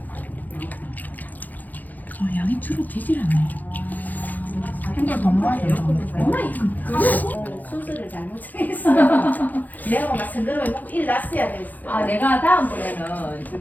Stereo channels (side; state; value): right; late; 0.083 ms